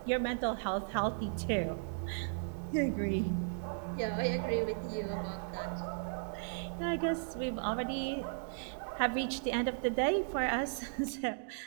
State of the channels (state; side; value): silent; left; digital silence